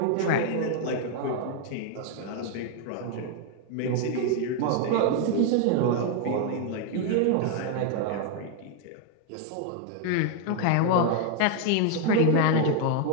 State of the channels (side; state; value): both; different; correlation 0.00